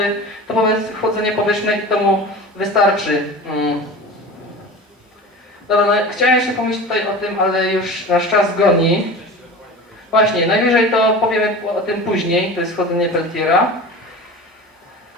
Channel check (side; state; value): both; normal; correlation 0.34